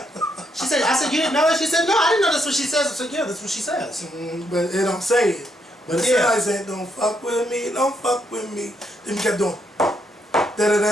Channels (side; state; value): both; normal; correlation 0.77